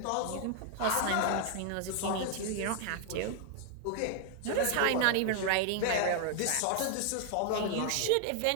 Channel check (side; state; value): both; different; correlation 0.00